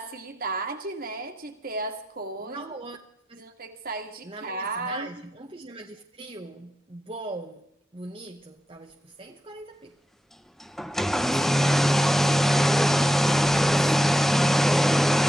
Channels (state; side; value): normal; both; correlation 0.88